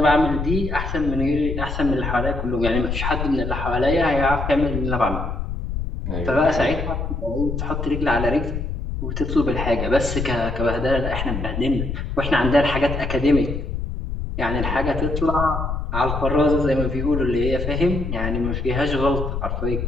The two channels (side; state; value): left; noise; rumble, 4 dB below the sound